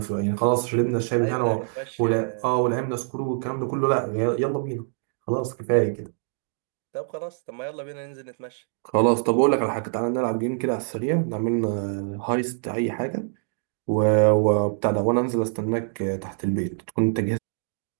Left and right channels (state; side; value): silent; left; 62 dB below the other